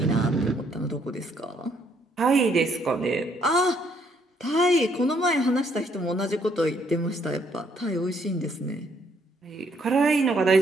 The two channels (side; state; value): both; normal; correlation 0.69